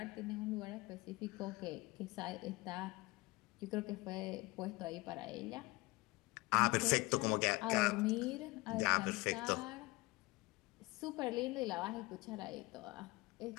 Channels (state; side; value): quieter; right; 22.4 dB